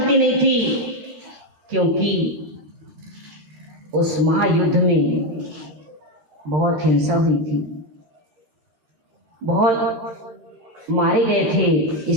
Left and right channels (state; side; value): late; left; 13 ms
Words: नहीं थी, क्योंकि उस महायुद्ध में बहुत हिंसा हुई थी, बहुत मारे गए थे,